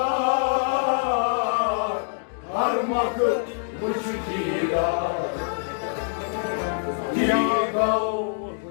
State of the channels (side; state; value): right; silent; digital silence